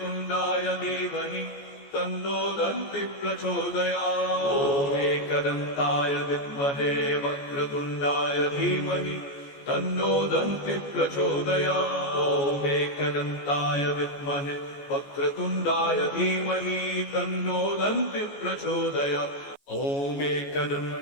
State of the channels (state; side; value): late; right; 14 ms